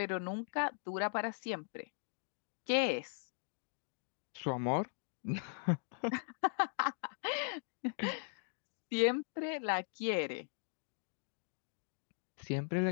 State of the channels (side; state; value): right; silent; digital silence